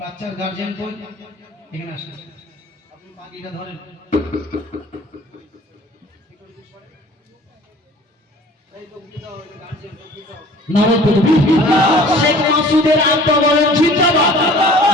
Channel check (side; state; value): both; normal; correlation 0.48